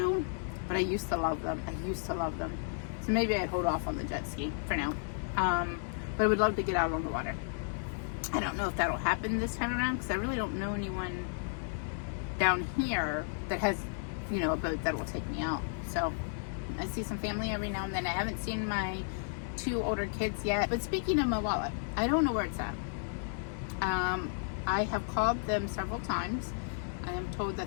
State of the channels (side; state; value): right; silent; 56 dB below the other